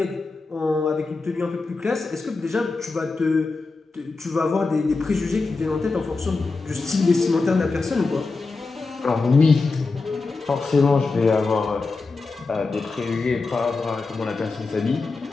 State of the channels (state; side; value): quieter; right; 3.9 dB